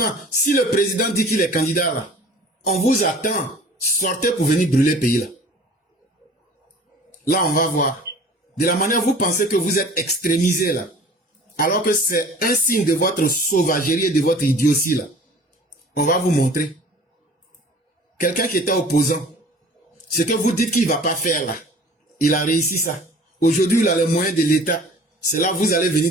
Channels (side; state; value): both; normal; correlation 0.47